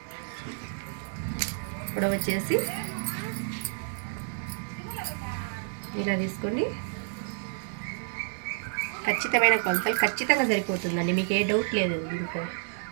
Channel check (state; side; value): silent; left; 58 dB below the other